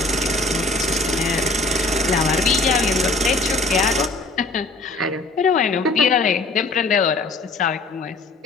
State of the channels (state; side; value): quieter; right; 3.2 dB